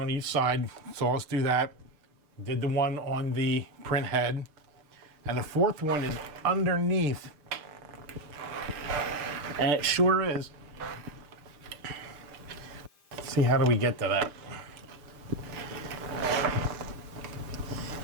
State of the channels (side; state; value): left; late; 6.7 ms